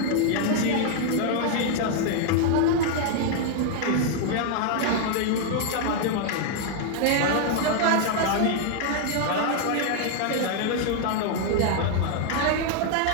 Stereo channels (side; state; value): both; different; correlation 0.00